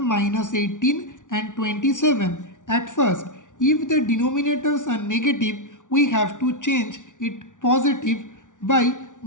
18 and 27. At first, if the denominators are negative, we have to change it positive by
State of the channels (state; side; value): late; right; 0.87 ms